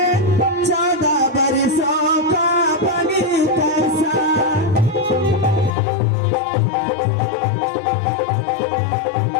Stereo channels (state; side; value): drops out; right; at 5.8 s